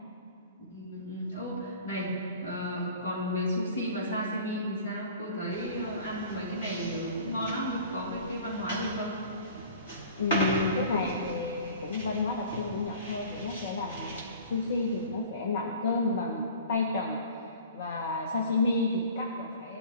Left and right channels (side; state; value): both; inverted; correlation -0.44